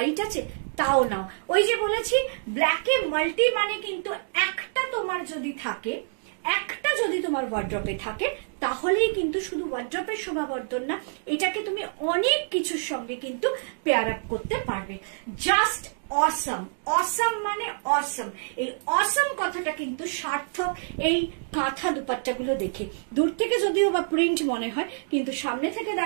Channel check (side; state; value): left; silent; digital silence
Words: আছে, তাও নাও। ওই যে বলেছি, ব্ল্যাকে মাল্টি, মানে কিন্তু একটা তোমার যদি থাকে, একটা যদি তোমার ওয়ার্ড্রপে থাকে, তাহলেই কিন্তু শুধু ওয়ার্ড্রপের শোভাবর্ধন না, এটাকে তুমি অনেক কিছুর সঙ্গে কিন্তু পেয়ার আপ করতে পারবে। জাস্ট অসম। অসম মানে অসম। এই অসম কথাটা কিন্তু সার্থক এই কাঁথা দুপাট্টাগুলো দেখে। দূর থেকে যদিও বা প্রিন্ট মনে হয়, কিন্তু সামনে থেকে